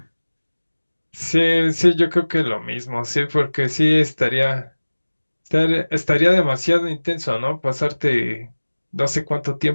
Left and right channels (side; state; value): both; inverted; correlation -1.00